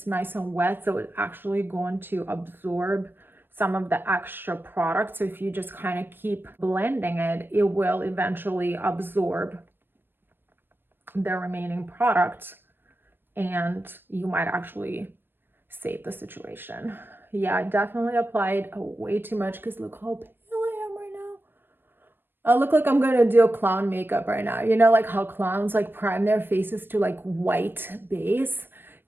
nice and wet, so it's actually going to absorb some of the extra product. So if you just kind of keep blending it, it will eventually absorb the remaining product, and you might actually save the situation. Yeah, I definitely applied way too much because look how pale I am right now. I look like I'm gonna do a clown makeup right now. You know, like how clowns like prime their faces to like white base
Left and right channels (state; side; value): late; left; 0.097 ms